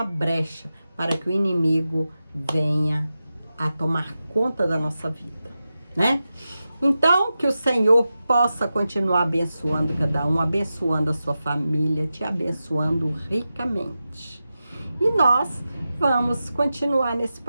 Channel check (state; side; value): inverted; both; correlation -0.92